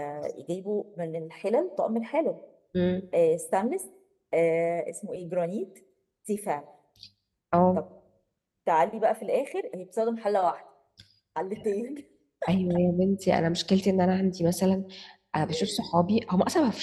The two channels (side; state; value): both; identical; correlation 1.00